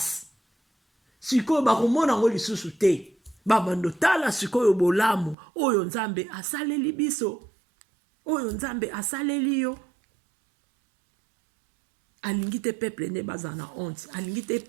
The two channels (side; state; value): left; drops out; at 5.4 s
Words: sikoyo bakomona ngo lisusu te. Babando tala sikoyo bolamu oyo nzambe asaleli biso oyo nzambe asaleli yo. Alingi te peuple ne baza na honte alingi te